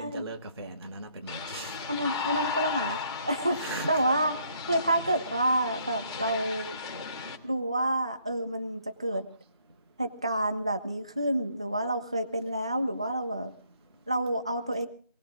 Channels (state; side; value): inverted; both; correlation -0.67